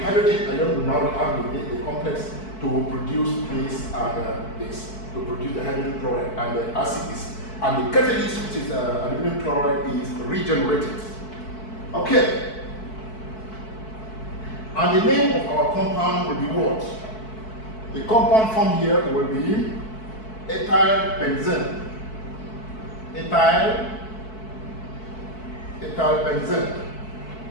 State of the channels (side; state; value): right; late; 4.6 ms